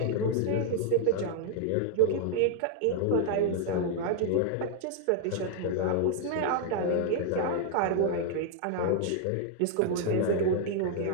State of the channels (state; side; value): different; both; correlation 0.00